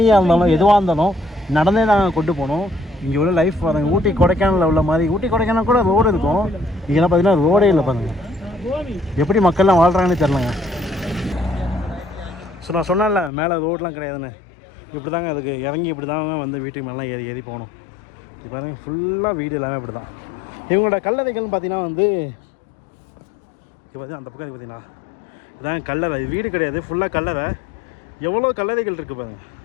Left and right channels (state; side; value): drops out; right; at 13.3 s